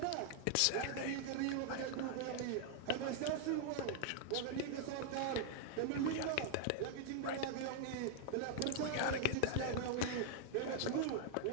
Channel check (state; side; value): different; both; correlation -0.01